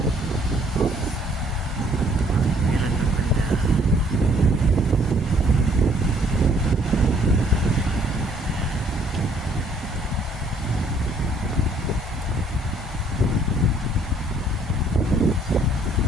Meron ng banda.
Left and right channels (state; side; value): normal; both; correlation 0.63